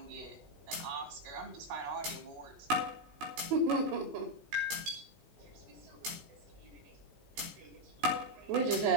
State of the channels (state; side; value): late; left; 15 ms